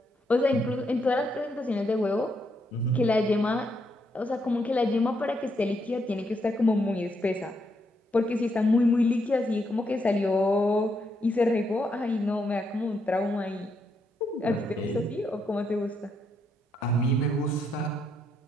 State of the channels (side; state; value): both; normal; correlation 0.78